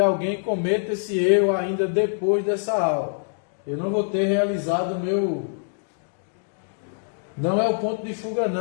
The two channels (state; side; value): silent; right; digital silence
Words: cometa esse erro ainda depois dessa aula. Eu não vou ter realizado o meu... Não é o ponto de fuga